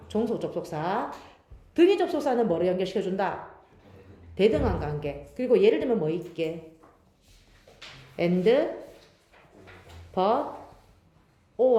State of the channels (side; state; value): both; identical; correlation 1.00